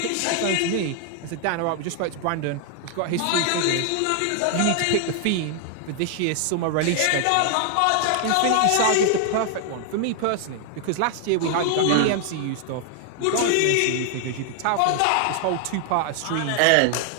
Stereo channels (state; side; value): different; both; correlation 0.00